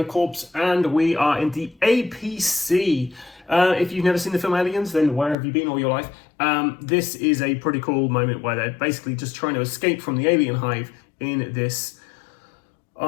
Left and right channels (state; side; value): drops out; right; at 5.4 s